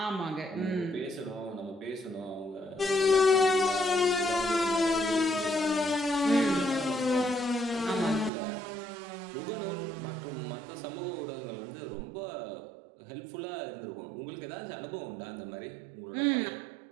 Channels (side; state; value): left; drops out; at 8.3 s